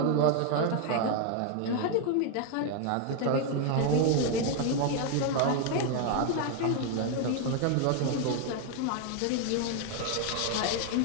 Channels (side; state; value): both; different; correlation 0.01